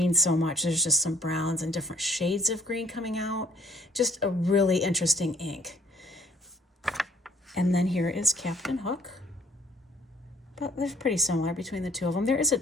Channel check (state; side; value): normal; both; correlation 0.60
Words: so much. There's just some browns and different shades of green coming out. Just a really interesting ink. And then here is Captain Hook. But they're pretty similar between the two of them. There is a